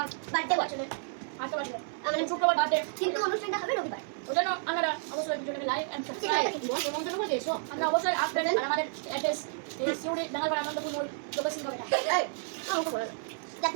বার্থডে বছরে আজকে বাড়ি মানে শুক্রবার বার্থডে কিন্তু অনুষ্ঠানটা হবে রবিবার। ওই জন্য আপনারা অবশ্যই ভিডিওটাকে লাইক এন্ড সাবস্ক্রাইব নিমন্ত্রণ করে দিয়েছো আমরা অবশ্যই আসবেন আর আমাদের অ্যাড্রেস এই সিউড়ি ডাঙ্গাপাড়া আনন্দপুর লোকেশন কবে এই আমাকে বলো দেখো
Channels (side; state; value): left; silent; digital silence